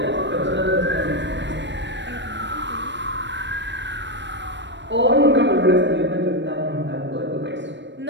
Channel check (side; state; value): left; late; 0.53 ms